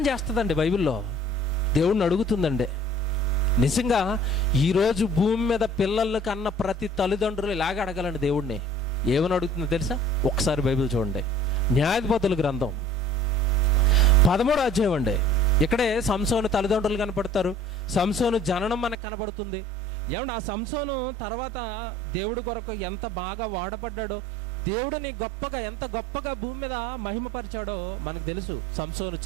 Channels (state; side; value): drops out; left; at 18.9 s